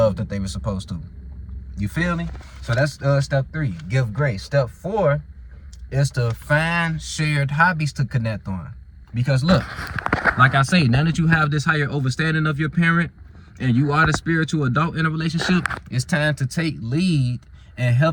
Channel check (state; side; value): identical; both; correlation 1.00